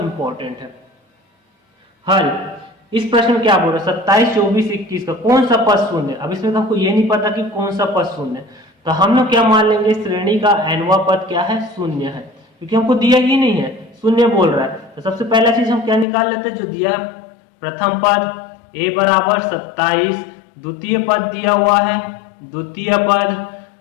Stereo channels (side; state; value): right; drops out; at 16.1 s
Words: है। हल, इस प्रश्न में क्या बोल रहे हैं, 27 24 21 का कौन सा पद शून्य है। अब इसमें तो हमको ये नहीं पता कि कौन सा पद शून्य है, तो हम लोग क्या मान लेंगे, श्रेणी का nवां पद क्या है, शून्य है, क्योंकि हमको दिया ही नहीं है, शून्य बोल रहा है। तो सबसे पहला चीज हम क्या निकाल लेते हैं, जो दिया है प्रथम पद a बराबर 27, द्वितीय पद दिया हुआ है, द्वितीय पद